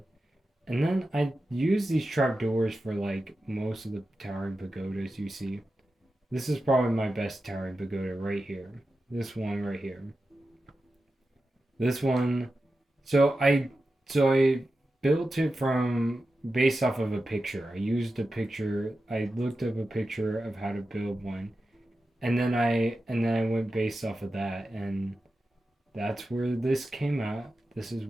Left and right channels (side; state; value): both; normal; correlation 0.92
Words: And then I use these trapdoors for like most of the towering pagodas you see. This is probably my best towering pagoda right here. This one right here. This one. So I built it from based off of a picture. I used a picture. I looked up a picture of how to build one, and then I went based off of that, and that's where this came out. This